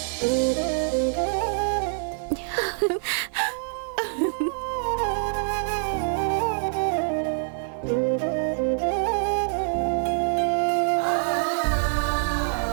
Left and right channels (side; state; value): left; silent; 62 dB below the other